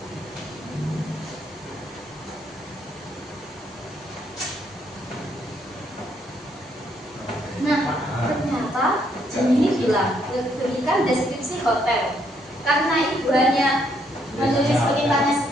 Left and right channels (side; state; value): both; normal; correlation 0.72